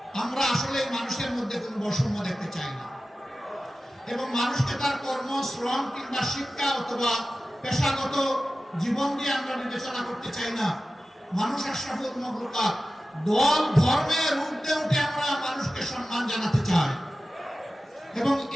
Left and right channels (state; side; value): normal; both; correlation 0.95